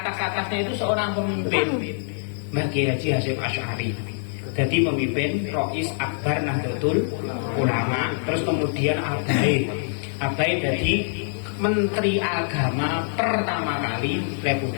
itu seorang pemimpin. Mbah Kiai Haji Hasyim Asy'ari jadi pemimpin Rois Akbar Nahdlatul Ulama. Terus kemudian Abai jadi Menteri Agama pertama kali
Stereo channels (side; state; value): right; silent; digital silence